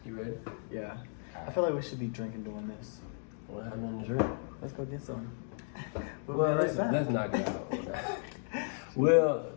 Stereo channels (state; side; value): silent; right; digital silence